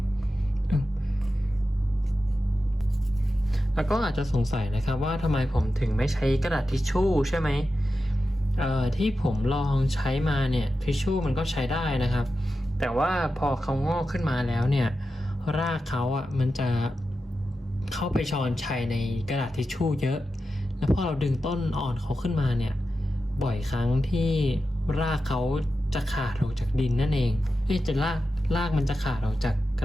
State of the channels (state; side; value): normal; both; correlation 0.91